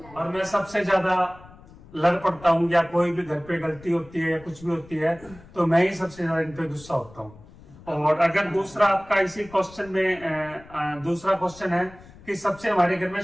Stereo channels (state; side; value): noise; left; rumble, 22 dB below the sound